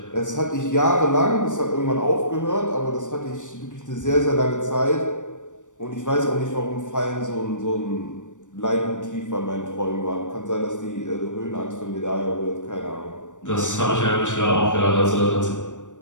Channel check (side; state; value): right; late; 0.86 ms